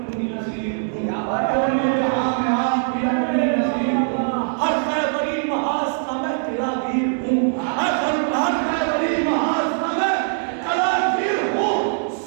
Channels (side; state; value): left; silent; digital silence